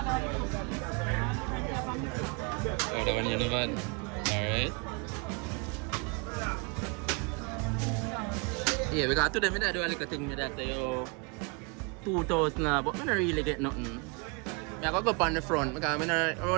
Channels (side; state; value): left; quieter; 32.2 dB